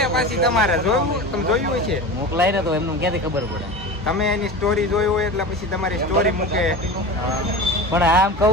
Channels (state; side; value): normal; both; correlation 0.30